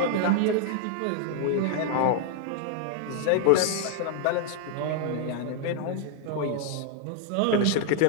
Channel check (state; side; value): different; both; correlation 0.00